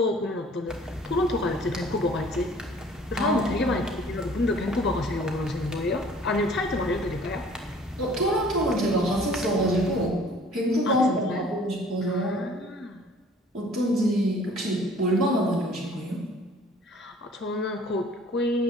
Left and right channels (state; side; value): normal; both; correlation 0.52